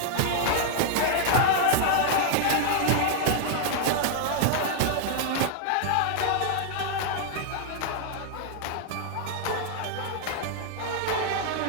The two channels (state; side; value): different; both; correlation 0.00